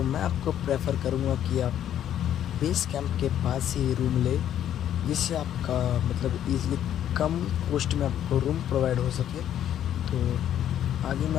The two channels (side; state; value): right; quieter; 10.6 dB